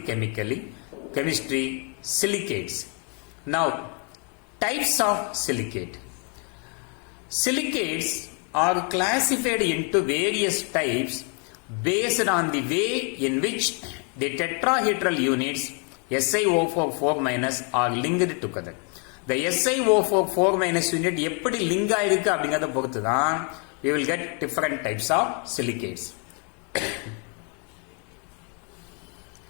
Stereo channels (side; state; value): right; quieter; 38.5 dB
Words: chemistry silicates. Now, types of silicate. Silicates are classified into various types based on the way in which the tetrahedral units SiO4 4- are linked together. The SiO4 4- unit எப்படி link ஆயிருக்கு அப்படிங்கறத பொறுத்து தான் we will get different types of silicates.